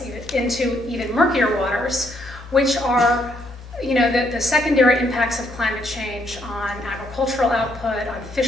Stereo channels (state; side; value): normal; both; correlation 0.73